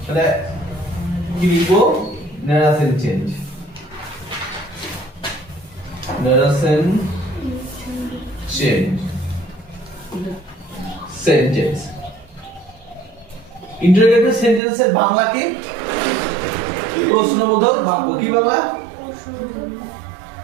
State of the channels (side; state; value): left; drops out; at 14.6 s